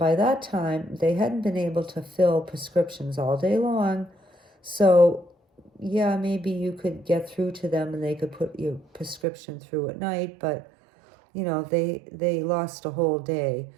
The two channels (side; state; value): left; drops out; at 9.2 s